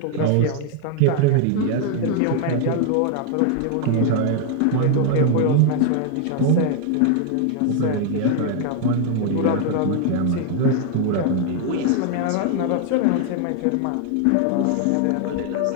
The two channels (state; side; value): different; both; correlation 0.00